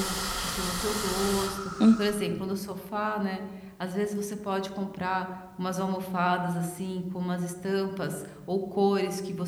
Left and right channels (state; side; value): identical; both; correlation 1.00